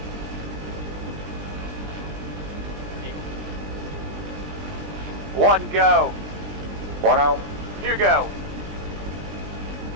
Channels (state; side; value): late; left; 20 ms